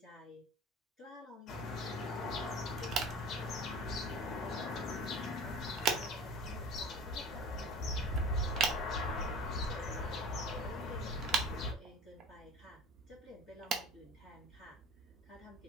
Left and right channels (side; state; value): both; normal; correlation 0.39